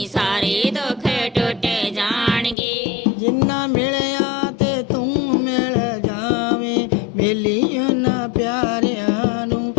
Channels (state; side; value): drops out; right; at 2.6 s